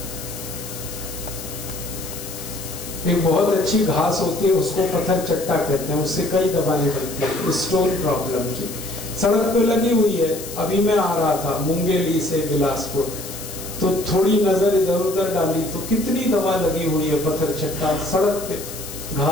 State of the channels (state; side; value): noise; left; hiss, 11 dB below the sound